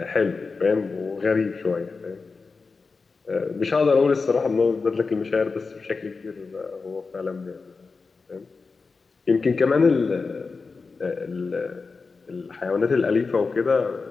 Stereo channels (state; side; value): quieter; right; 4.4 dB